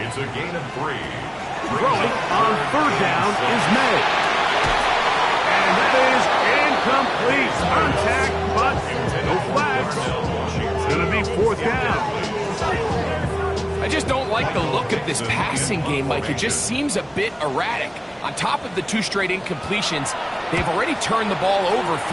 a gain of 3. Throwing on 3rd down is May. And that is incomplete. Contact, but no flags. It's going to be 4th down. I just don't like the look of this passing game, Mike. It just seems a bit erratic. On top of the 2 straight incompletions, they've already turned the ball over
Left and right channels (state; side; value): identical; both; correlation 1.00